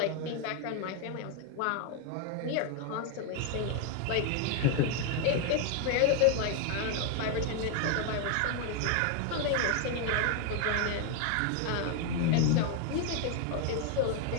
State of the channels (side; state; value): both; different; correlation 0.01